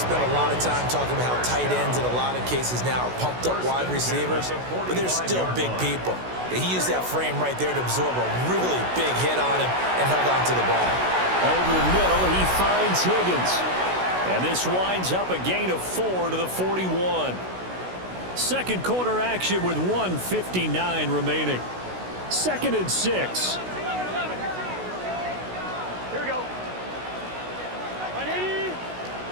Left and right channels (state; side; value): late; left; 16 ms